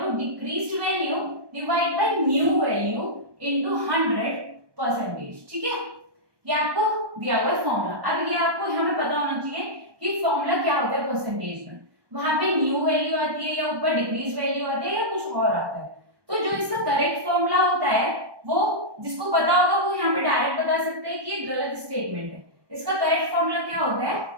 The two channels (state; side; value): late; left; 1.2 ms